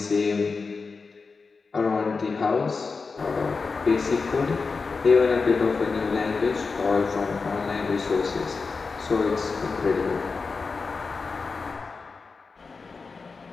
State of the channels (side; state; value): right; quieter; 4.5 dB